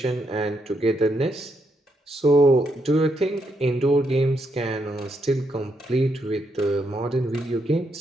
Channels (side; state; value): both; normal; correlation 0.78